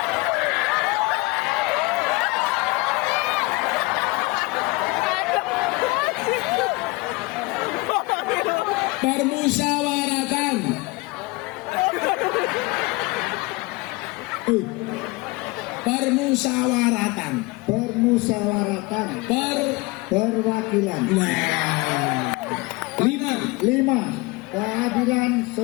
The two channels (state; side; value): quieter; right; 23.9 dB